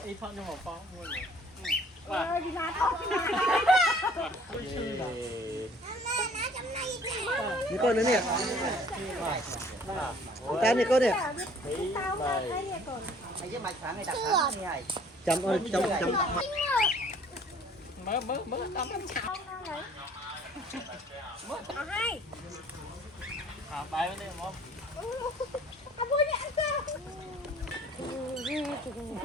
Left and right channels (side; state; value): both; normal; correlation 0.54